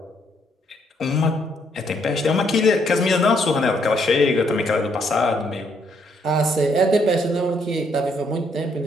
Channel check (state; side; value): normal; both; correlation 0.72